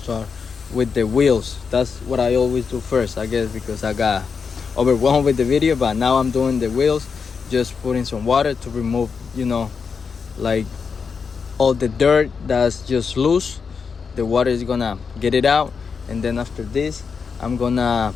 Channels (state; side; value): quieter; right; 5.7 dB